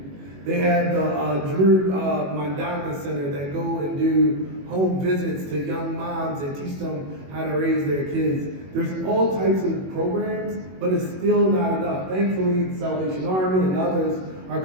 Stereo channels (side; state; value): left; late; 21 ms